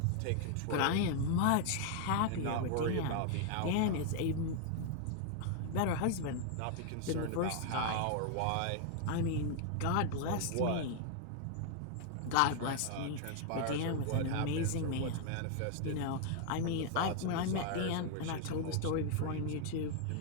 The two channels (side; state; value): both; different; correlation 0.00